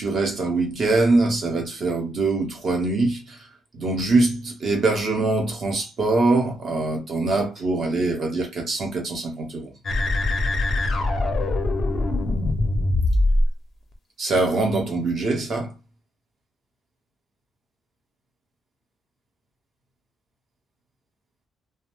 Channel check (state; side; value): normal; both; correlation 0.81